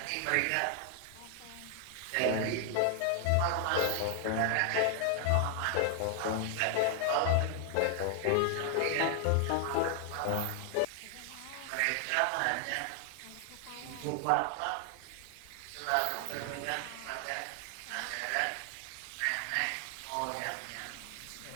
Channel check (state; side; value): different; both; correlation 0.00